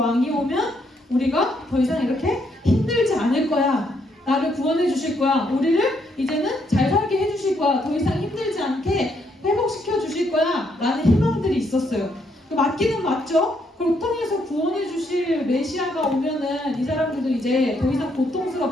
오면 우리가 더 이상 이렇게 힘들지 않을 거야. 나를 구원해 주실 거야. 우리를 이제는 잘 살게 해 주실 거야. 더 이상 힘들지 않게 회복시켜 주실 거야. 라는 희망들이 있었어요. 맞기는 맞죠? 고통에서 구원해 주실 메시아가 오면은 이 사람들도 이제 더 이상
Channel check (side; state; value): both; normal; correlation 0.74